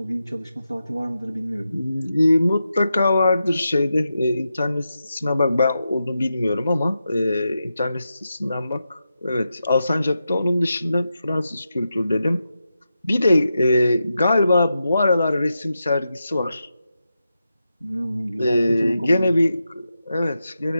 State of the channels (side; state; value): both; inverted; correlation -0.88